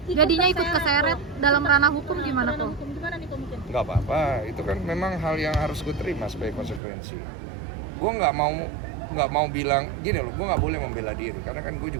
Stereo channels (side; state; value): left; drops out; at 6.8 s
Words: jadinya ikut keseret dalam ranah hukum gimana kok? Gimana nih kok mungkin? Gak apa-apa, itu kan memang hal yang harus gue terima sebagai konsekuensi. Gue nggak mau bilang gini loh, gue nggak boleh membela diri karena kan gue